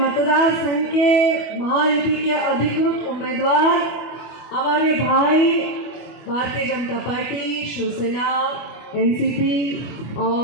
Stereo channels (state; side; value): late; right; 25 ms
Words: संघ के महायुति के अधिकृत उम्मीदवार हमारे भाई भारतीय जनता पार्टी, शिवसेना, एनसीपी